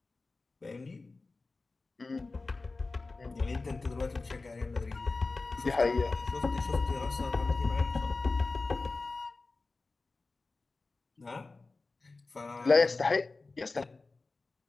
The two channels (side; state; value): right; quieter; 3.6 dB